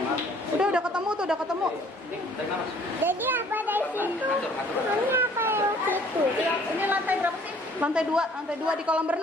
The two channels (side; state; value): both; normal; correlation 0.56